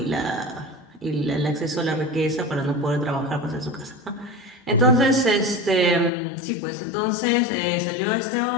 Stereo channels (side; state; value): right; drops out; at 6.1 s